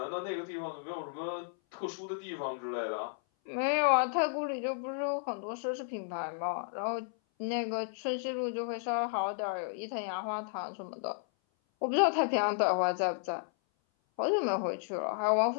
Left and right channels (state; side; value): silent; right; 56 dB below the other